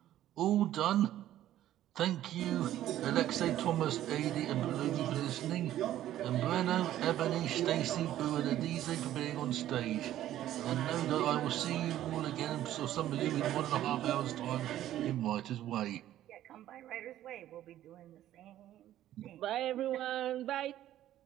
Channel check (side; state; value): left; quieter; 12.8 dB